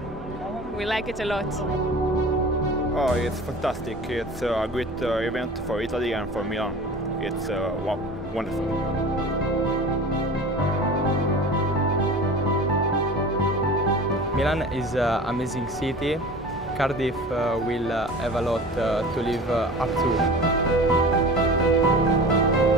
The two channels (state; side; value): normal; both; correlation 0.38